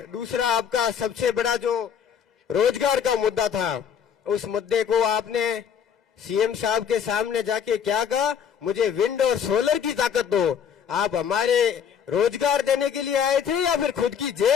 दूसरा, आपका सबसे बड़ा जो रोजगार का मुद्दा था, उस मुद्दे को आपने सीएम साहब के सामने जाके क्या कहा? मुझे विंड और सोलर की ताकत दो। आप हमारे रोजगार देने के लिए आए थे या फिर खुद की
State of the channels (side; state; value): right; quieter; 7.8 dB